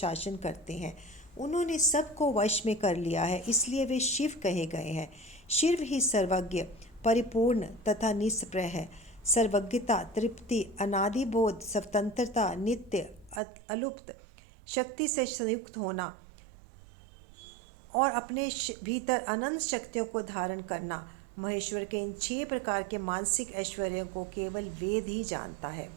करते हैं। उन्होंने सबको वश में कर लिया है, इसलिए वे शिव कहे गए हैं। शिव ही सर्वज्ञ, परिपूर्ण तथा निष्प्रय है। सर्वज्ञता, तृप्ति, अनादिबोध, स्वतंत्रता, नित्य, अलुप्त, शक्ति से संयुक्त होना और अपने भीतर अनंत शक्तियों को धारण करना, महेश्वर के इन 6 प्रकार के मानसिक ऐश्वर्यों को केवल वेद ही जानता है।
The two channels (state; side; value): drops out; left; at 13.4 s